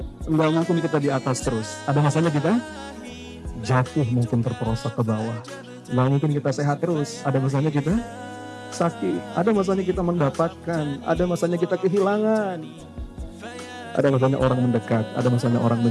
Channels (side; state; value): both; identical; correlation 1.00